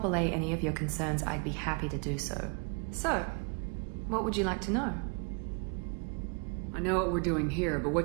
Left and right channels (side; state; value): left; quieter; 35.6 dB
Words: allay any of your concerns, I'd be happy to do so. So, what would you like to know? I know what we're doing here, but